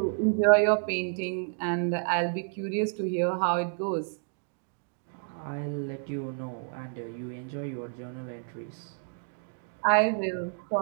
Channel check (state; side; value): silent; left; 58 dB below the other